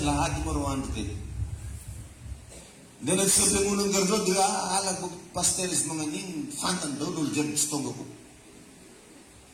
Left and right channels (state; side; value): identical; both; correlation 1.00